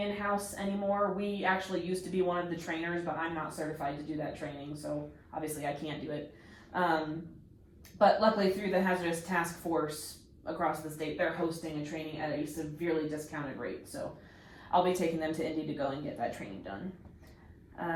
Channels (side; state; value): both; identical; correlation 1.00